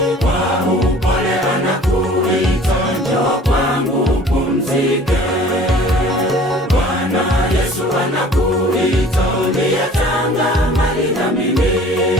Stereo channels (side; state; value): both; normal; correlation 0.48